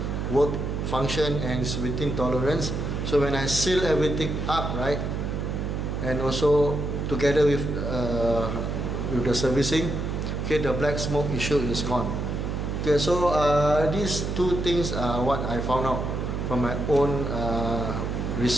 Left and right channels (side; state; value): right; noise; hum, 2 dB below the sound